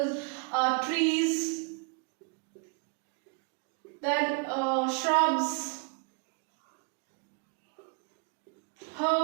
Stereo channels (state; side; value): quieter; left; 36.3 dB